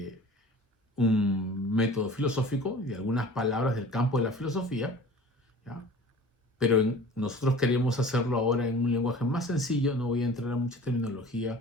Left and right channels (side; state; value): both; normal; correlation 0.42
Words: un método filosófico y de algunas palabras del campo de la filosofía, ¿ya? Pero nosotros queremos hacerlo ahora en un lenguaje más sencillo, no voy a entrar a mucha